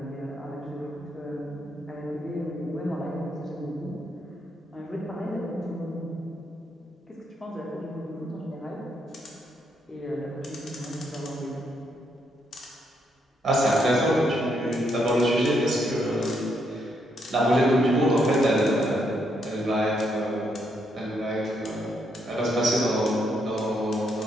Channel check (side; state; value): both; normal; correlation 0.76